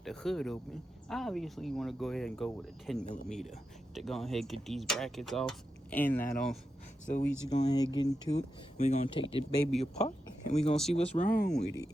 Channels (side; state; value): both; normal; correlation 0.89